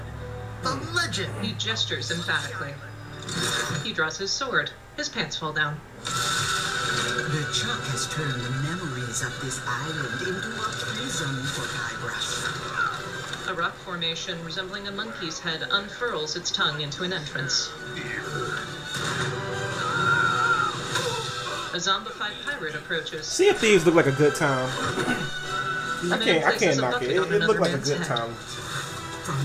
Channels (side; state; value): both; identical; correlation 1.00